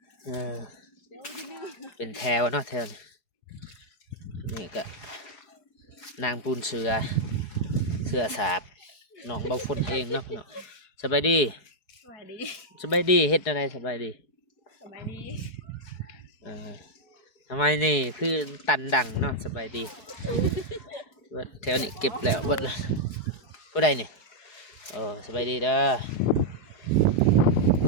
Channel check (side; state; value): right; late; 4.7 ms